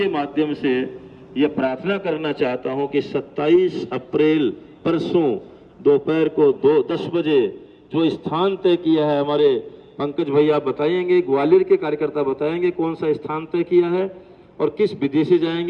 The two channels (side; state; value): both; identical; correlation 1.00